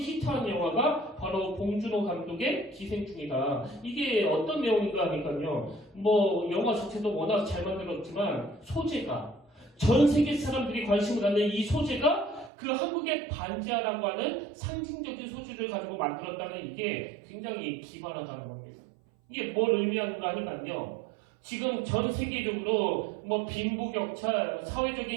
영화가 바로 봉준호 감독의 기생충이다. 이게 어떤 내용인가 하니까요. 뭐 영화 자체도 워낙 잘 만들었지만 소재가 전 세계 사람들이 관심을 갖는 이 소재가 그 한국의 반지하라고 하는 상징적인 소재를 가지고 만들었다는 이게 굉장히 기발하다는 겁니다. 이게 뭘 의미하는가 하니까요. 지금 전 세계적으로 뭐 빈부격차,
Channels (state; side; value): drops out; left; at 12.5 s